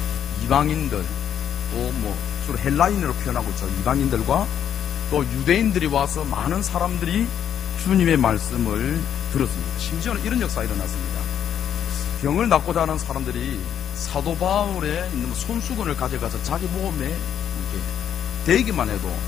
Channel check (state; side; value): quieter; right; 9.3 dB